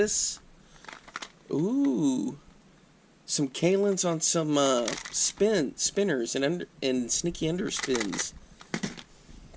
Ooh, some Kalins on some spinners and sneaky underspins.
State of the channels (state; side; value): identical; both; correlation 1.00